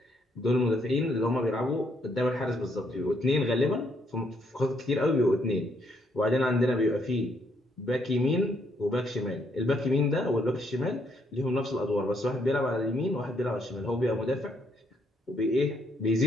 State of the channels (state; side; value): normal; both; correlation 0.72